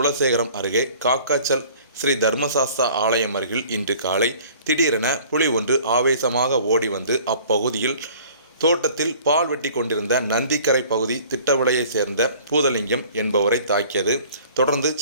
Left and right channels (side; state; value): both; inverted; correlation -0.50